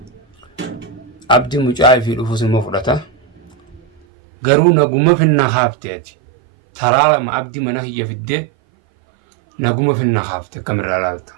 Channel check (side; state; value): left; drops out; at 4.0 s